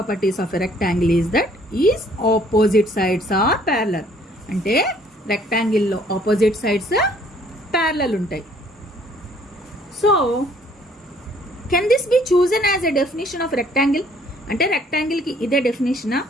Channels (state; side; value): normal; both; correlation 0.60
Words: of a rectangle is that its opposite sides are parallel. అంటే రెక్టాంగిల్ లో ఆపోజిట్ సైడ్స్ ప్యారలల్ ఉంటాయి. So can this be chosen as a definition of rectangle? అంటే rectangle కి ఇదే డెఫినేషనా?